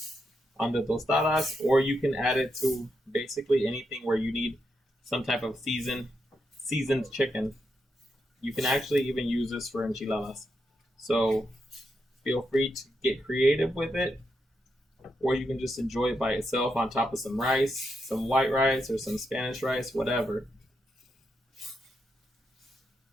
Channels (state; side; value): normal; both; correlation 0.83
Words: the tostadas, or you can add it to basically anything where you need some type of seasoned chicken. You can actually even use this for enchiladas. So feel free to get creative with it, or you can just enjoy it by itself on top of some rice, some white rice, or some Spanish rice, whatever.